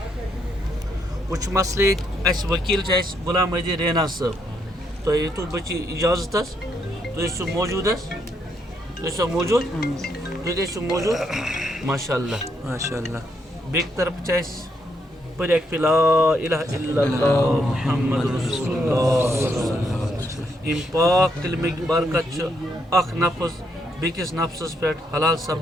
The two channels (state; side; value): normal; both; correlation 0.76